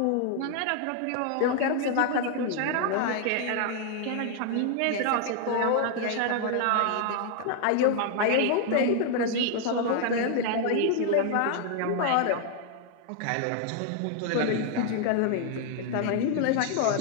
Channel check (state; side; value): different; both; correlation 0.00